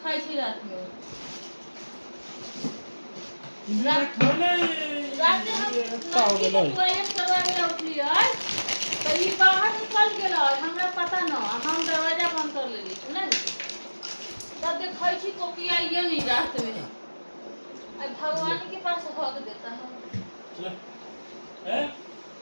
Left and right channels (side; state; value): both; inverted; correlation -1.00